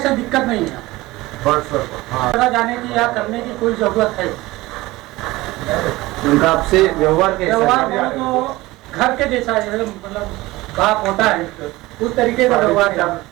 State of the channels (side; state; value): left; quieter; 19.5 dB